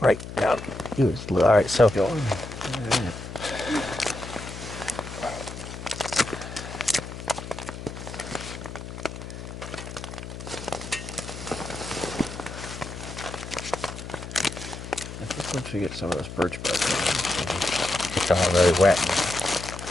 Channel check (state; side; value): noise; left; hum, 10 dB below the sound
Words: right down. All right, so. Once we get some of this birch bark on, It's all really wet.